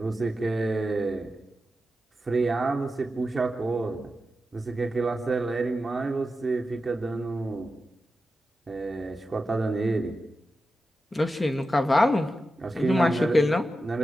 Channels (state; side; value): normal; both; correlation 0.91